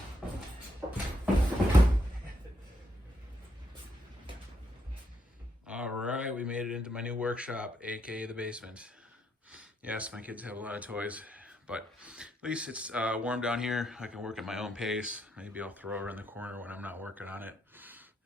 All right, we made it into my new workshop, aka the basement. Yes, my kids have a lot of toys, but at least it's warm down here. I can work at my own pace. Maybe I'll throw her in the corner when I'm not working on it.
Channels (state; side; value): normal; both; correlation 0.77